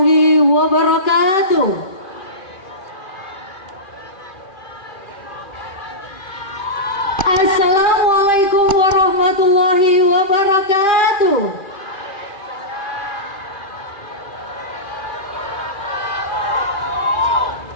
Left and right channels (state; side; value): late; right; 2.5 ms